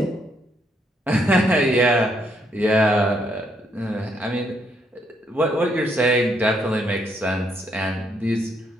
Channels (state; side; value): normal; both; correlation 0.74